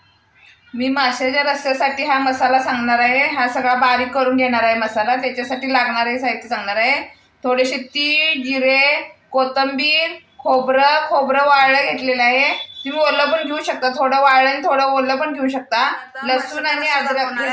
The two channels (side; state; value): both; identical; correlation 1.00